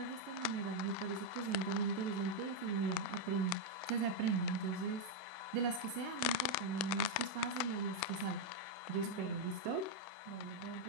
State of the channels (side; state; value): left; late; 32 ms